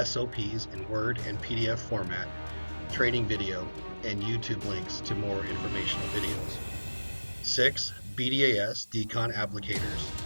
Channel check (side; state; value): both; inverted; correlation -1.00